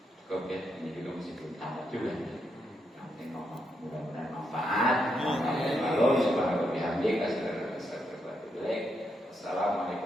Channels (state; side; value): normal; both; correlation 0.81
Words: Cukup ya, ini juga masih belum tamat juga. Yang penting ngomong, mudah-mudahan manfaat. Kalau subhanahu wa bihamdika